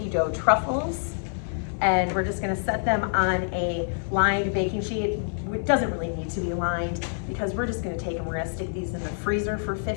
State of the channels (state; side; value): silent; right; 61 dB below the other